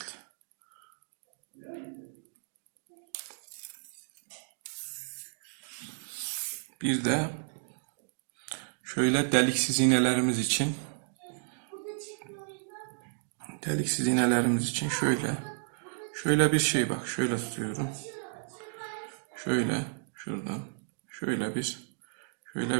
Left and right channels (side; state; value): left; silent; digital silence